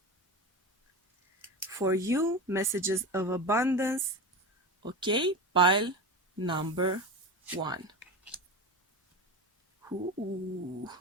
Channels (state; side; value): normal; both; correlation 0.24